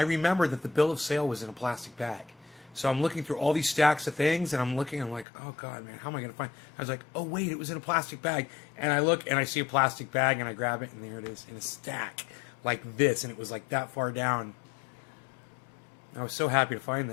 remembered that the bill of sale was in a plastic bag. So I'm looking through all these stacks of things, and I'm like, oh God, man, how am I going to find? I was like, oh wait, it was in a plastic bag. And I look and I see a plastic bag, and I grab it, and there it is in a stack like this, and it was like that far down. I was so happy to find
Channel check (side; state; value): right; drops out; at 5.2 s